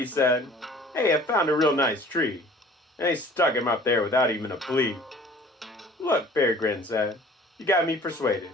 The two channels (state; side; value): normal; both; correlation 0.49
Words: said, hey, I found a real nice tree. And they stuck him up there without even a plea. Look, Perry Grin said, you got me persuaded.